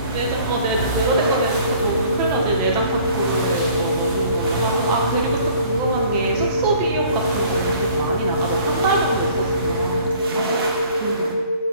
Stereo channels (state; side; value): inverted; both; correlation -0.53